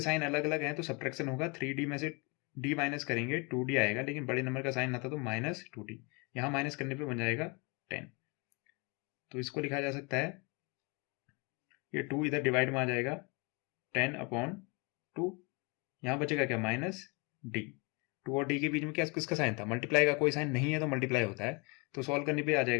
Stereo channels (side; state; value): right; quieter; 30.1 dB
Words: साइन अलग अलग हैं तो सब्ट्रैक्शन होगा, 3D में से D माइनस करेंगे 2D आएगा, लेकिन बड़े नंबर का साइन आता तो माइनस 2D, यहाँ माइनस करने पे बन जाएगा 10। तो इसको लिखा जा सकता है, ये 2 इधर डिवाइड में आ जाएगा 10/2, यहाँ बचेगा क्या माइनस D। 2 और D के बीच में क्या किसका साइन था, मल्टीप्लाई का, कोई साइन नहीं है तो मल्टीप्लाई होता है, तो सॉल्व करने पे आ